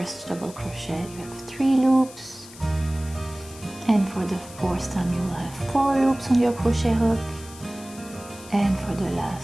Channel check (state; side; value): noise; left; hiss, 18 dB below the sound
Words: double crochet, you have 3 loops, and for the fourth time you will have 4 loops on your crochet hook, and for the